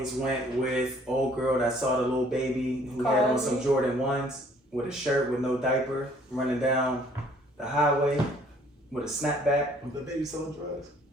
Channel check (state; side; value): normal; both; correlation 0.59